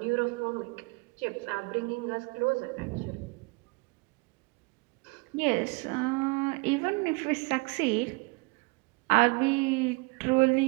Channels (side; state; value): left; quieter; 27.7 dB